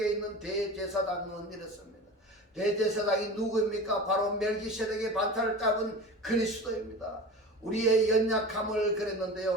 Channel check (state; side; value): normal; both; correlation 0.33